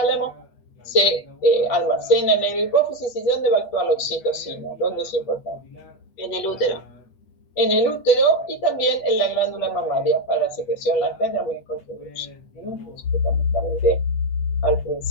se almacena en el hipófisis. ¿Y dónde va a actuar la oxitocina? ¿Dónde es importante? En el útero. En el útero y también en la glándula mamaria para la secreción láctea también contribuye. Fundamentalmente al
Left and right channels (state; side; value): late; right; 8.4 ms